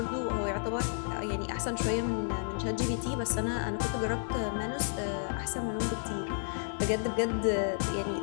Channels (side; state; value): right; silent; 57 dB below the other